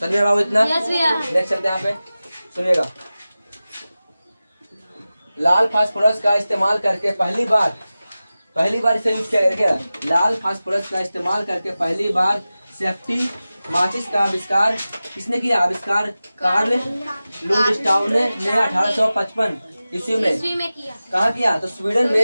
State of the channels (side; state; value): both; inverted; correlation -0.96